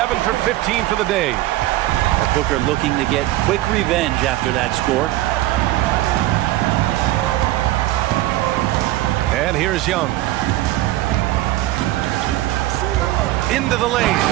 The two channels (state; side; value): quieter; left; 16.1 dB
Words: for 15 for the day. Booker looking to get quick revenge after that score. And here's Young. Into the lane.